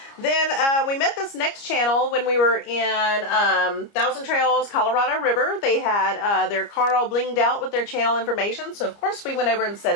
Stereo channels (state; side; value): late; right; 29 ms